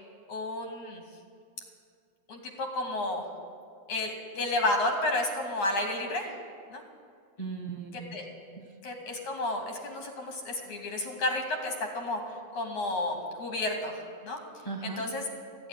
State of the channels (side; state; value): right; late; 10 ms